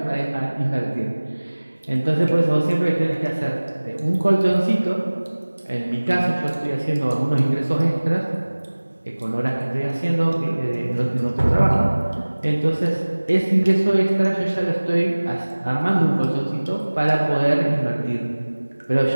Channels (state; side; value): inverted; both; correlation -1.00